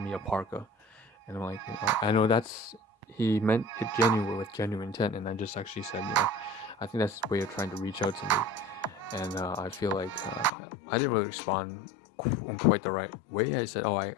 a parka, and I'm like, I know he meant it with genuine intent, and I just actually said, I think that's his way of trying to reach out to me. And I feel like I didn't really respond in quite the right way. I said, I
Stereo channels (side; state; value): right; drops out; at 10.5 s